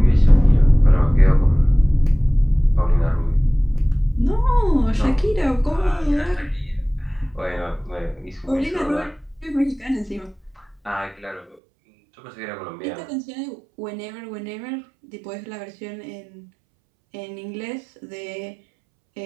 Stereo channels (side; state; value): left; drops out; at 11.6 s